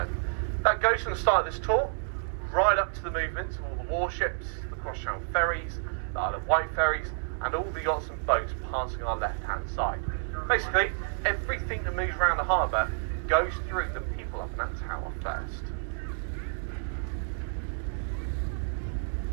That goes from the start of this tour right up to the movements of all the warships, the cross-channel ferries, the Isle of Wight ferries, and all the yachts and boats passing our left-hand side. Basically, everything that moves around the harbour goes through the people up in that tower first.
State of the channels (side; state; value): left; silent; digital silence